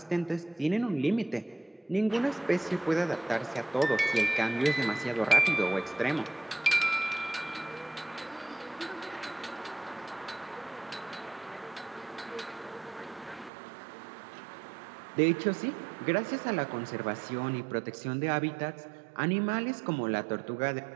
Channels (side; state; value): left; drops out; at 13.5 s